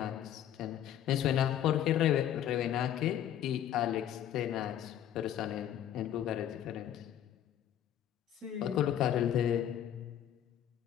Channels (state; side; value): quieter; right; 10.7 dB